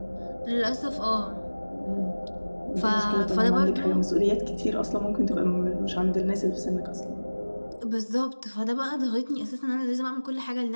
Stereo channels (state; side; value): inverted; both; correlation -1.00